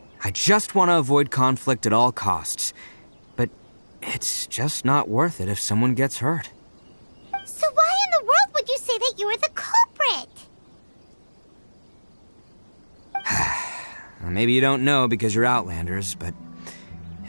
I just want to avoid conflict at all costs. But it's just not worth it if someone gets hurt. So why in the world would you say that you were the culprit? Maybe you don't know because you're Outlanders, but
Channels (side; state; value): both; inverted; correlation -1.00